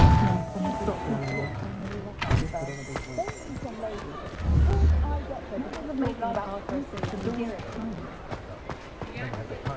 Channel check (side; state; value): both; identical; correlation 1.00